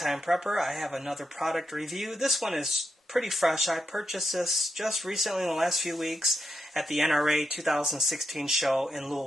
Prepper. I have another product review. This one is pretty fresh. I purchased this just recently in the last few weeks at the NRA 2016 show in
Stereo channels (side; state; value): both; normal; correlation 0.83